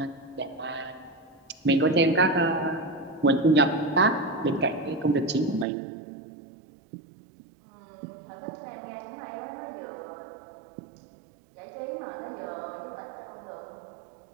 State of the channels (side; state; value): left; drops out; at 5.7 s